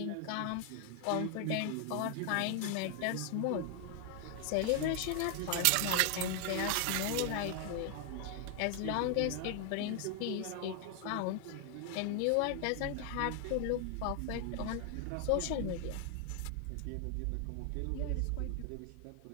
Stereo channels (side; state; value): both; different; correlation 0.00